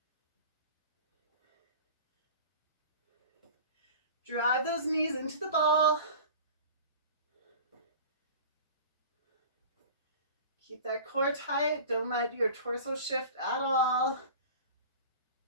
Drive those knees into the ball. Keep that core tight. Don't let your torso shift at all.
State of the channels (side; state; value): both; inverted; correlation -0.39